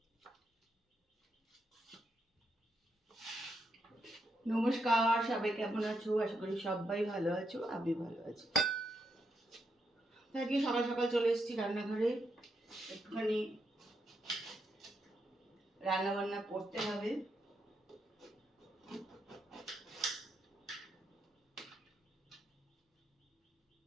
সবাই কেমন আছো? আশা করি সবাই ভালো আছো, আমি ভালো আছি। আজকে সকাল সকাল চলে এসেছি রান্নাঘরে, একটুখানি রান্না বান্না করতে হবে।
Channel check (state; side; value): normal; both; correlation 0.81